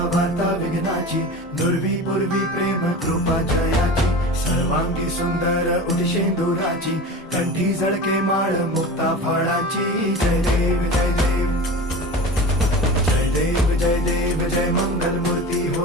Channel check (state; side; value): normal; both; correlation 0.32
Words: वार्ता विघ्नाची, दुर्वी पूर्वी प्रेम कृपा जयाची, सर्वांगी सुंदर उदिशेंदुराची, कंठी झळके माळ मुक्ता फळाची. जय देव जय देव जय देव जय देव जय मंगल मूर्ती